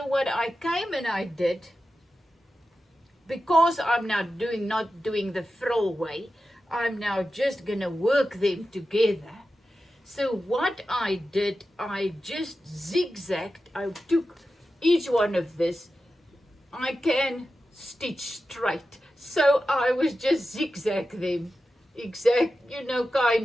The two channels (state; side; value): normal; both; correlation 0.92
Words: what I came and I did, because I'm now not doing the frill way, I'm now just going to work them together. So what I did, I just zigzagged. I took each one of this. I can stitch straight. So I was just zigzag them